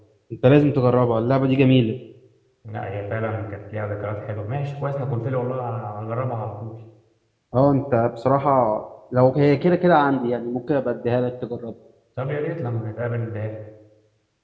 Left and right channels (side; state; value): both; identical; correlation 1.00